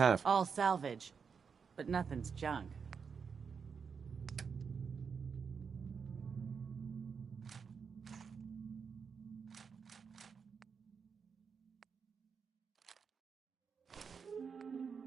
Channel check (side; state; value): left; quieter; 6.0 dB